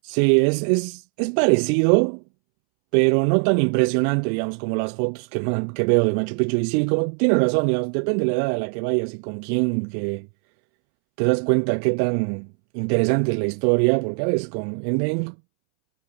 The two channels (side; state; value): left; silent; 65 dB below the other